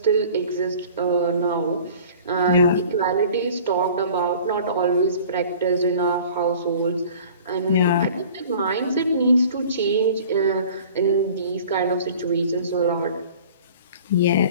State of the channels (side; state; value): both; inverted; correlation -0.46